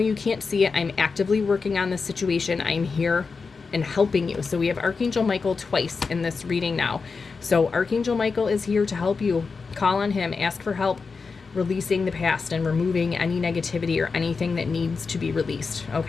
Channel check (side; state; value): right; quieter; 4.8 dB